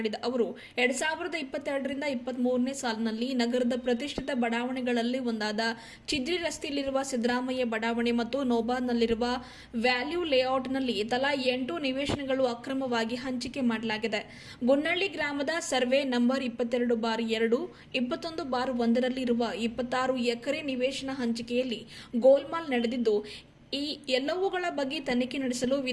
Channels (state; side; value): identical; both; correlation 1.00